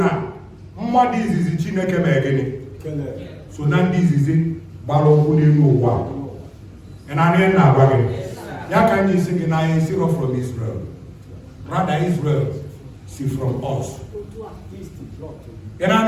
what is it? Chineke megeni. So now this is it. And I mean now, can you sing I zero from Israel? Rather, Israel see from us. And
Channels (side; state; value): both; identical; correlation 1.00